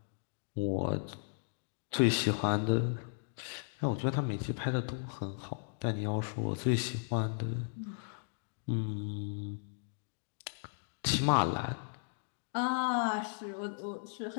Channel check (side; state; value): right; silent; digital silence